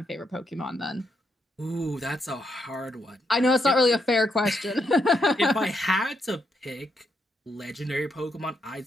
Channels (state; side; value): normal; both; correlation 0.79